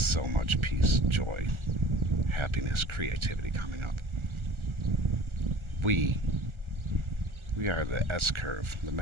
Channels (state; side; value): late; left; 1.4 ms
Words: much peace, joy, happiness, creativity coming up. We are the S-curve, the